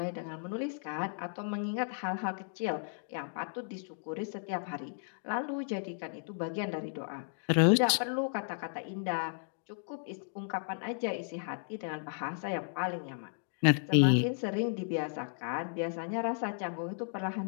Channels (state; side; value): silent; right; digital silence